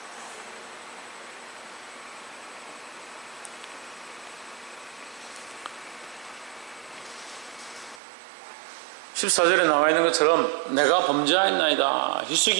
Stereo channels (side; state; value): left; drops out; at 8.0 s